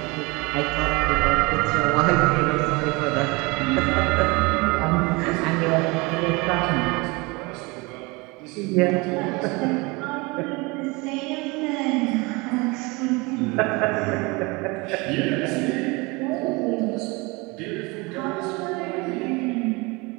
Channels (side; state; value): left; quieter; 25.9 dB